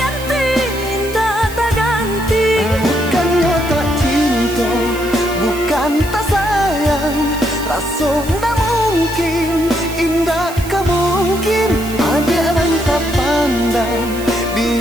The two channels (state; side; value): noise; right; hiss, 15 dB below the sound